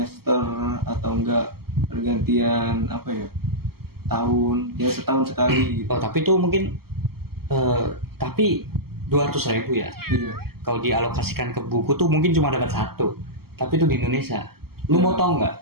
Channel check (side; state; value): left; late; 0.95 ms